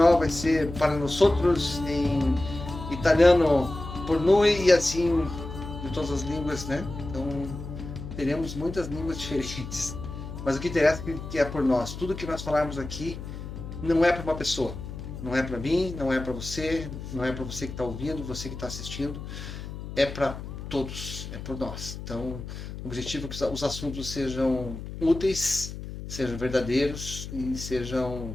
vai ser Para Nosotros, em italiano Por Noi e assim de todas as línguas, né? Então teremos muitas línguas diferentes. Mas o que interessa é que é por nós. Tudo que nós falarmos aqui não é para uma pessoa. Não é para mim, não é para você, não é para você que está ouvindo, você que está assistindo. É para todos, é por nós. Então, o objetivo é que os assuntos sejam úteis, sejam verdadeiros e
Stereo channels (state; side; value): noise; left; hum, 9 dB below the sound